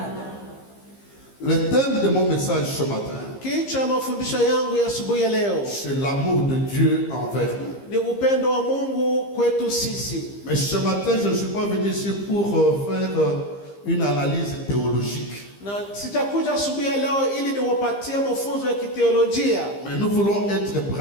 le thème de mon message ce matin, Kichwa mafundisho yangu ya asubuhi ya leo c'est l'amour de Dieu envers nous. ni upendo wa Mungu kwetu sisi. Mais ce matin, je ne suis pas venu ici pour faire une analyse théologique. Na sitakuja asubuhi ya leo ili niwapatie mafunzo ya kiteolojia, Mais nous voulons être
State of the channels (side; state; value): right; late; 15 ms